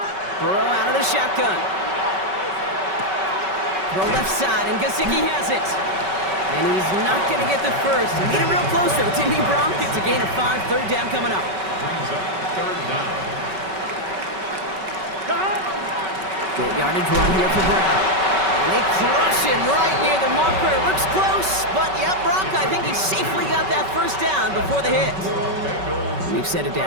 Burrow out of the shotgun. Throw left side, and Gesicki has it. And he's not going to get the first. He made it real close, though, didn't he, Brock? It's a gain of 5. Third down coming up. Brings up third down. Good yardage run here for Brown. And they crush him right near the marker. Looks close, but yeah, Brock, I think he safely got that first down before the hit. New set of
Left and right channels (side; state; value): left; late; 5.3 ms